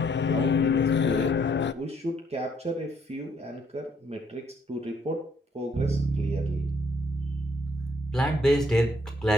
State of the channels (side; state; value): both; normal; correlation 0.67